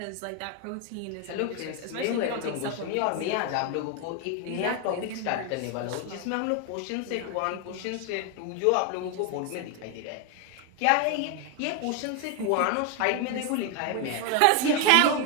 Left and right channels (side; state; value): both; different; correlation 0.01